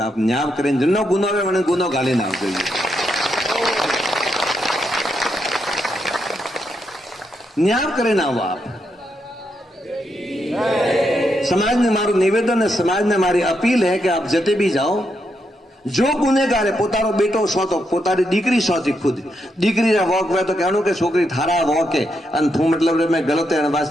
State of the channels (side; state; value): both; normal; correlation 0.81